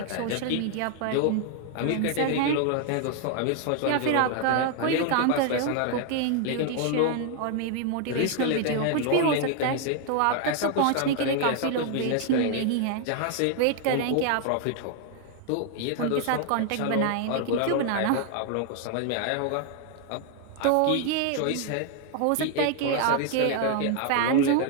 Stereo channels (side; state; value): both; different; correlation 0.00